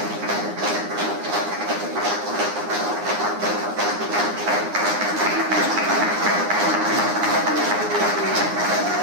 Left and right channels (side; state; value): left; late; 9.7 ms